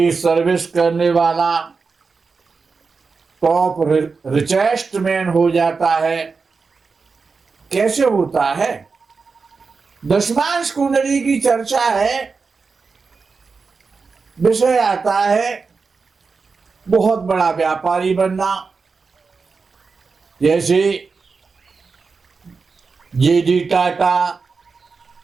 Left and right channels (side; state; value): left; quieter; 4.7 dB